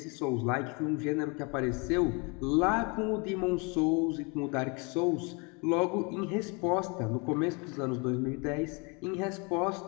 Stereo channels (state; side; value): quieter; right; 31.2 dB